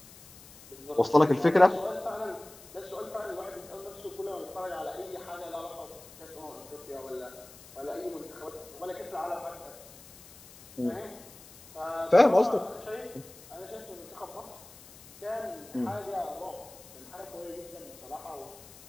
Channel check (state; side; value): noise; left; hiss, 20 dB below the sound